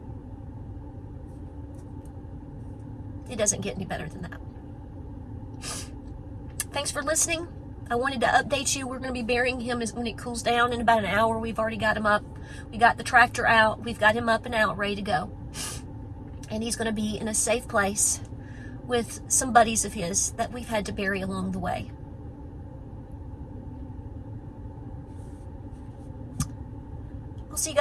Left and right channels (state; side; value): identical; both; correlation 1.00